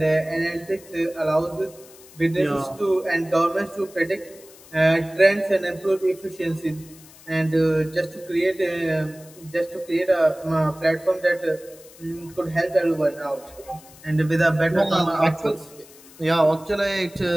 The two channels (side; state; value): left; noise; hiss, 22 dB below the sound